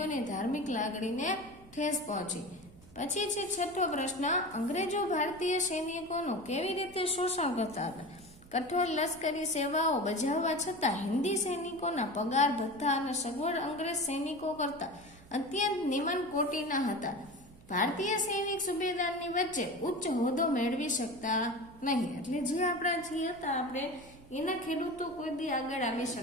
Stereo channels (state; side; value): noise; right; hum, 23 dB below the sound